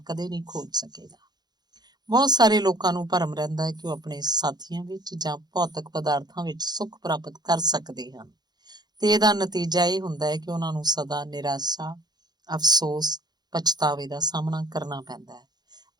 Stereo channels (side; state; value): left; late; 0.20 ms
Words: ਕਦੇ ਨਹੀਂ ਖੋਜ ਸਕੇਗਾ। ਬਹੁਤ ਸਾਰੇ ਲੋਕਾਂ ਨੂੰ ਭਰਮ ਰਹਿੰਦਾ ਹੈ ਕਿ ਉਹ ਆਪਣੇ ਸਾਥੀਆਂ ਵਿੱਚ ਜਾਂ ਭੌਤਿਕ ਪਦਾਰਥਾਂ ਵਿੱਚ ਸੁੱਖ ਪ੍ਰਾਪਤ ਕਰ ਸਕਦੇ ਹਨ ਤੇ ਇਹਦਾ ਨਤੀਜਾ ਇਹ ਹੁੰਦਾ ਹੈ ਕਿ ਉਹਨਾਂ ਨੂੰ ਸਦਾ ਨਿਰਾਸ਼ਾ, ਅਫਸੋਸ, ਪਛਤਾਵੇ ਦਾ ਸਾਹਮਣਾ ਕਰਨਾ ਪੈਂਦਾ ਹੈ।